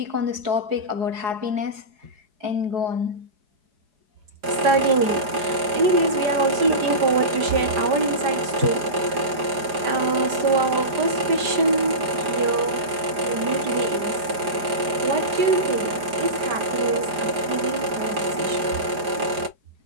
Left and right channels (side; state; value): left; late; 4.9 ms